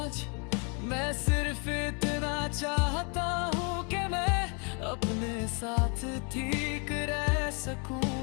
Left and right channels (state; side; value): quieter; right; 35.7 dB